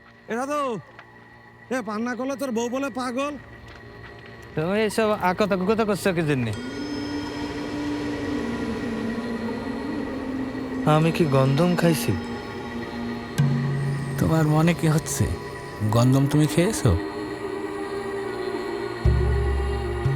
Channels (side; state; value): both; identical; correlation 1.00